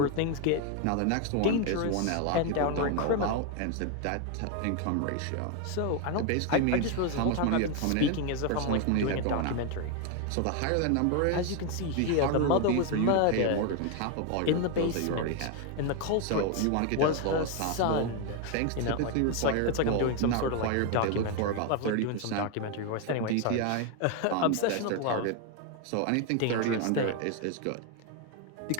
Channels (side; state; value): both; different; correlation 0.01